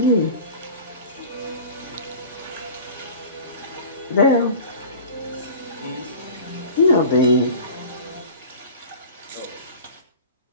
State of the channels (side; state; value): both; inverted; correlation -0.39